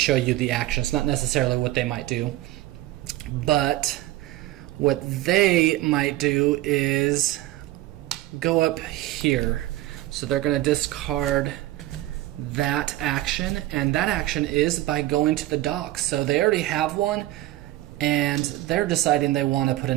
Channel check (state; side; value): quieter; left; 16.0 dB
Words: you the actions, not necessarily what they might do. But what they might do is go up here. So they're going to discard that action, and that action is by going to the dock. So they already have one, and they're deciding they want to put